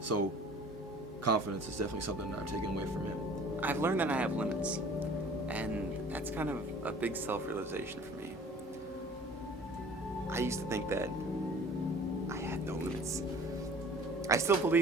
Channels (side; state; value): both; normal; correlation 0.48